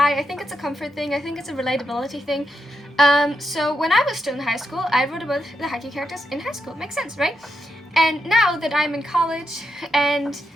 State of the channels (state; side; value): normal; both; correlation 0.83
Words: I think it's a comfort thing. I think it's a relatability thing. So when I was still in high school, I wrote about the Haiku characters in high school. Makes sense, right? And now that I'm in college and